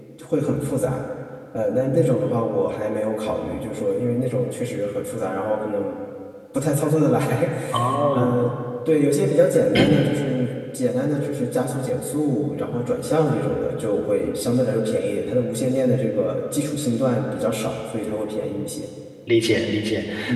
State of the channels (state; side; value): identical; both; correlation 1.00